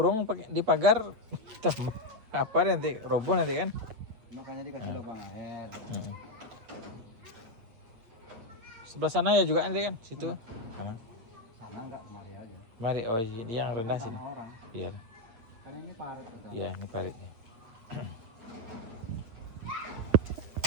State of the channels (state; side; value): late; left; 8.7 ms